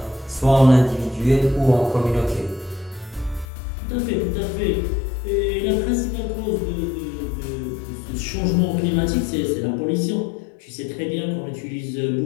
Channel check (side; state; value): right; drops out; at 3.5 s